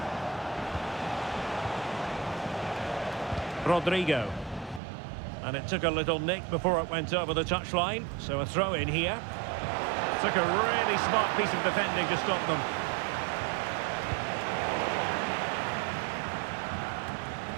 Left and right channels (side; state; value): left; drops out; at 4.8 s